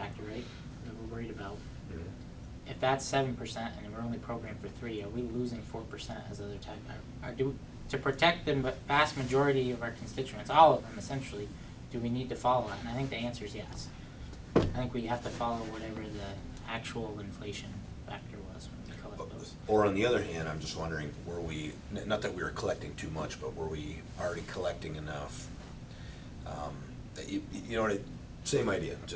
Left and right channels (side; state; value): both; identical; correlation 1.00